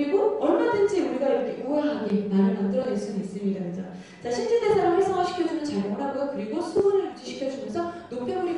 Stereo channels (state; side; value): identical; both; correlation 1.00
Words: 얼마든지 우리가 이렇게 우아하게 말을 만들어낼 수는 있습니다. 그죠? 자, 신진대사를 활성화시켜주는 작용을 하고요. 그리고 수분을 유지시켜주면서 노폐물이